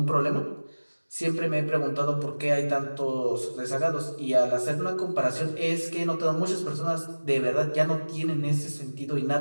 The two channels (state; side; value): inverted; both; correlation -1.00